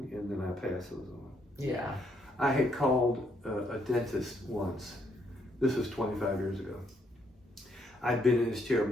and then I pass those on. Yeah. I had called a dentist once. This was 25 years ago. I'd been in his chair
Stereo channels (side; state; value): both; normal; correlation 0.72